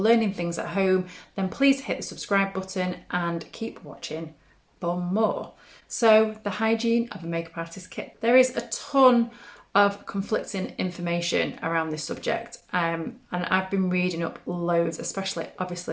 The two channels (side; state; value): both; identical; correlation 1.00